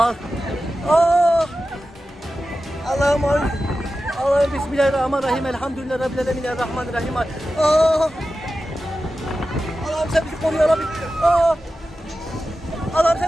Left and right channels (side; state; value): both; normal; correlation 0.93